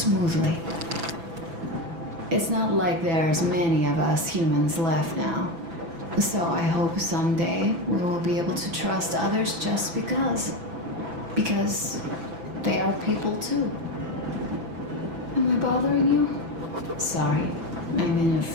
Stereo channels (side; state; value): left; late; 6.0 ms